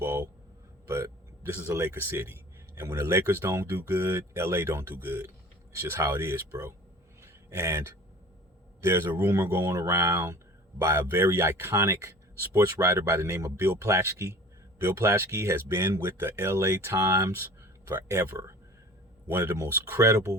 but this is a Lakers city. And when the Lakers don't do good, LA don't do good. It's just how it is, bro. And there's a rumor going around by a very iconic sports writer by the name of Bill Plaschke. Bill Plaschke has been with the LA Times forever. One of the most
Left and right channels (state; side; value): normal; both; correlation 0.43